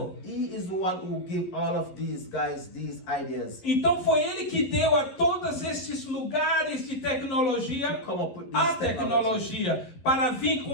he is the one who gave all of these guys these ideas. Então foi ele que deu a todos esses lugares de tecnologia Come up with a this tecnologia para vir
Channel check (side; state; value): right; late; 11 ms